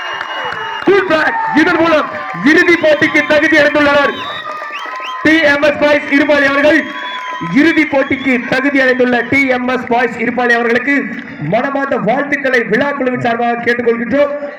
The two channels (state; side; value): identical; both; correlation 1.00